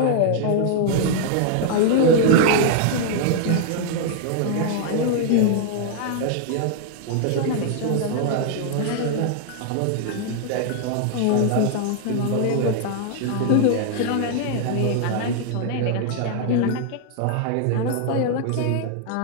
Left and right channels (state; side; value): different; both; correlation 0.00